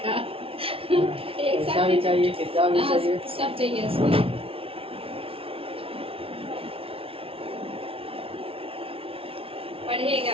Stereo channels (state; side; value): late; left; 0.26 ms